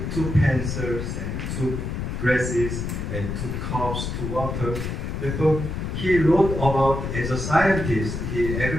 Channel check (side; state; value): left; noise; rumble, 4 dB below the sound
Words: two pencils and two glasses and two cups, two water. Therefore, he wrote about, as a scientist, he